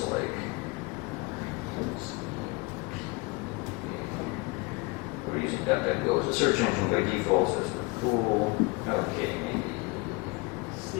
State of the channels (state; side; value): quieter; right; 25.9 dB